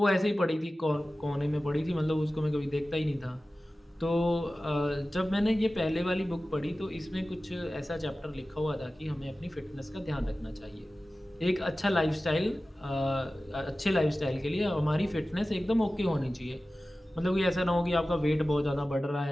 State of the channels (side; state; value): both; normal; correlation 0.96